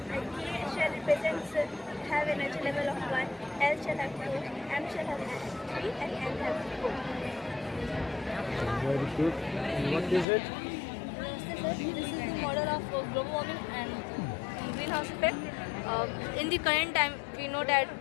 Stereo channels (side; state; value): right; drops out; at 10.2 s